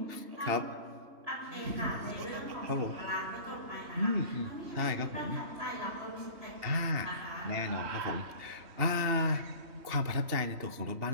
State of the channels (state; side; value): late; left; 2.8 ms